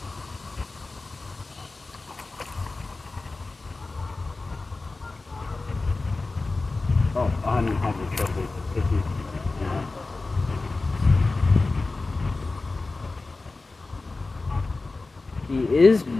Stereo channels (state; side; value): quieter; right; 3.5 dB